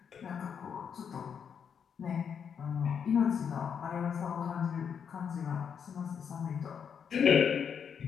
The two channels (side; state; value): right; quieter; 7.3 dB